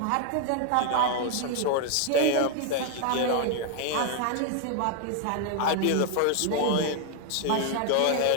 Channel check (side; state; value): both; different; correlation 0.00